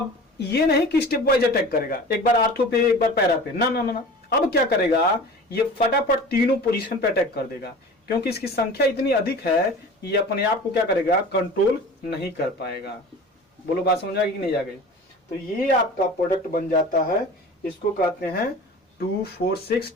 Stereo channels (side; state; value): both; normal; correlation 0.39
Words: ये नहीं कि स्टेप वाइज अटैक करेगा, एक बार आर्थो पे एक बार पैरा पे, ना ना ना ना। अब क्या करेगा, ये फटाफट तीनों पोजीशन पे अटैक कर देगा, क्योंकि इसकी संख्या इतनी अधिक है ये अपने आप को क्या करेगा, कंट्रोल नहीं कर पाएगा। बोलो बात समझ आ गई कि नहीं आ गई। तो ये आपका प्रोडक्ट बन जाता है, इसको कहते हैं 2,4,6